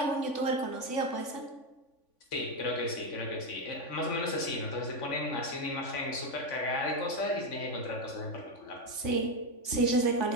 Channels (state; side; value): late; right; 3.5 ms